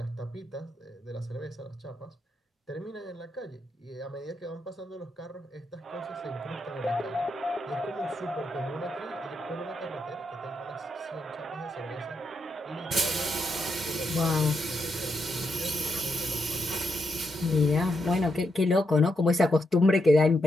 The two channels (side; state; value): both; normal; correlation 0.81